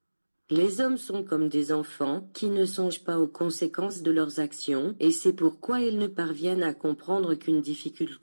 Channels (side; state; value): both; inverted; correlation -1.00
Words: Les hommes sont comme des enfants qui ne songent pas aux conséquences de leurs actions et c'est pourquoi ils ne parviennent à comprendre qu'une